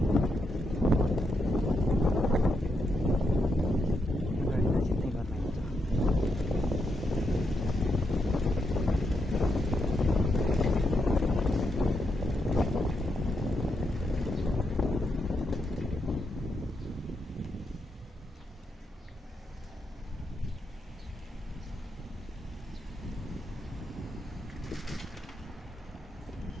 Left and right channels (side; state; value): both; normal; correlation 0.82